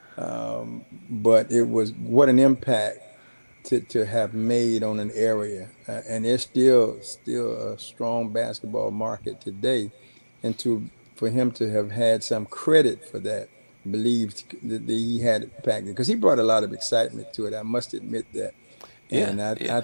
but it was what an impact to have made on an area, and there's still a strong basketball market today, and to for him to have had some credit for that, believed that he had impact because he brought a lot of excitement to it. I must admit that, yeah, and yeah. I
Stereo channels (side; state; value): both; inverted; correlation -1.00